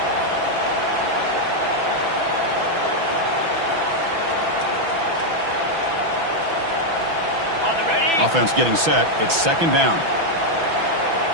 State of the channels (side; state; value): left; late; 6.0 ms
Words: Offense getting set. It's second down.